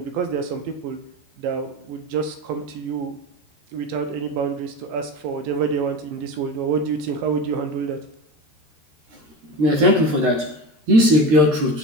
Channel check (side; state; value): left; late; 13 ms